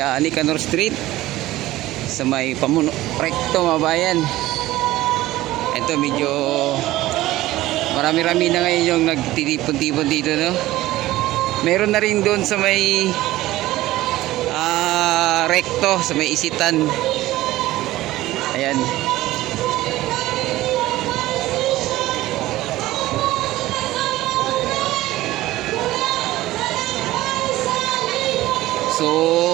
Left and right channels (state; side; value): quieter; left; 16.5 dB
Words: Nicanor Street, sa may Pamuno Recto mga bayan. Ito medyo marami-rami na ngayon yung nagtitipon-tipon dito, no? Meron na rin doon sa may Recto, sa may Isitan. Ayan.